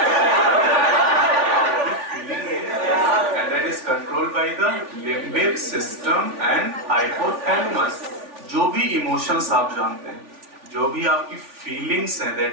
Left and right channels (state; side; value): late; left; 3.4 ms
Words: फीलिंग है, and that is controlled by the limbic system and hypothalamus. जो भी इमोशंस आप जानते हैं, जो भी आपकी फीलिंग्स हैं,